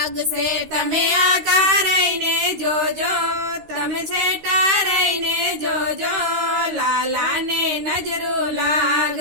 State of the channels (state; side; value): late; left; 13 ms